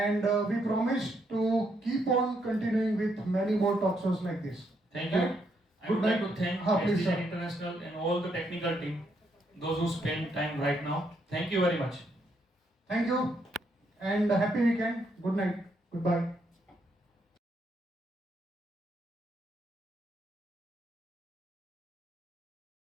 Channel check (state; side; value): normal; both; correlation 0.76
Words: we promise to keep on continuing with many more talk shows like this. Thank you. I Good would like night. to thank Please, STJ sir. International and all the technical team, those who spend time right now. Thank you very much. Thank you. and happy weekend. Good night. Goodbye.